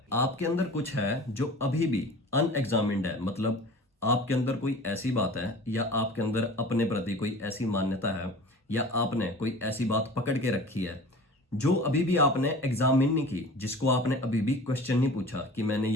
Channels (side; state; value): both; normal; correlation 0.40